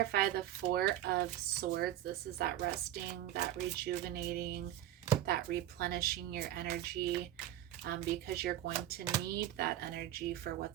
the Four of Swords. This is that resting, that rejuvenating, that replenishing your energy, because you're going to need that energy for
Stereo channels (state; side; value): quieter; left; 12.5 dB